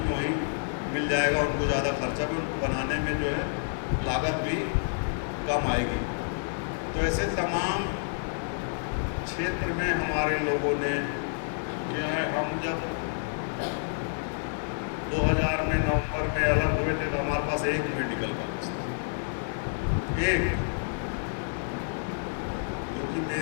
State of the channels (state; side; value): silent; right; digital silence